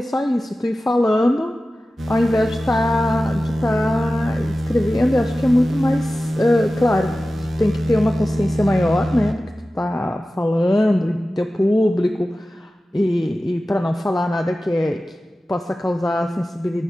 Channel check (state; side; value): normal; both; correlation 0.95